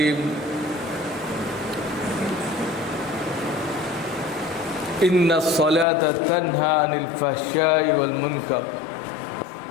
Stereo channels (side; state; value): right; drops out; at 5.9 s